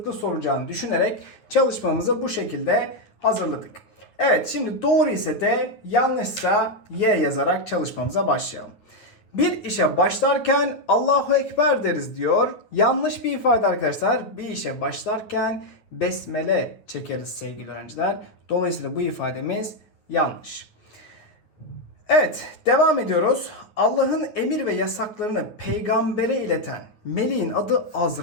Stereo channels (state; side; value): late; right; 9.3 ms